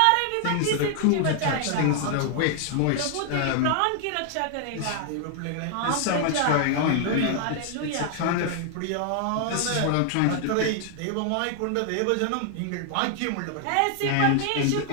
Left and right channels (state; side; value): different; both; correlation 0.00